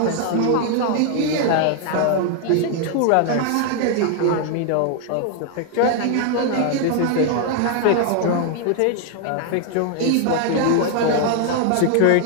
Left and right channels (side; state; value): both; different; correlation 0.00